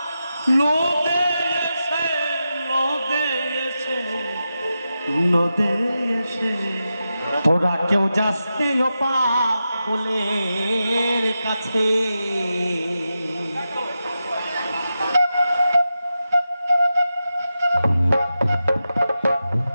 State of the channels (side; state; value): both; inverted; correlation -0.90